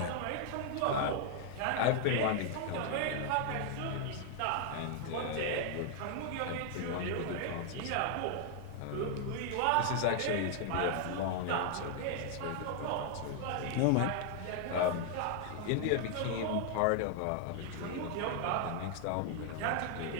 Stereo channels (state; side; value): different; both; correlation 0.00